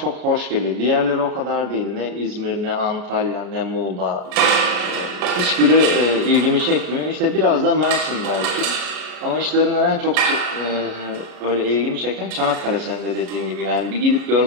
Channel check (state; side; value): late; left; 33 ms